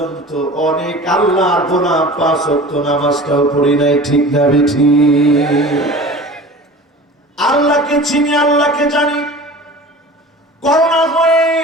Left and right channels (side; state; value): both; normal; correlation 0.39